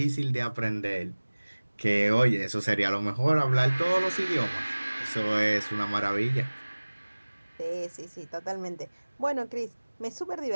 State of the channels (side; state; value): both; inverted; correlation -1.00